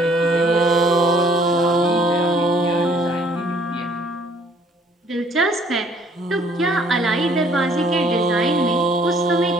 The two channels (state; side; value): normal; both; correlation 0.60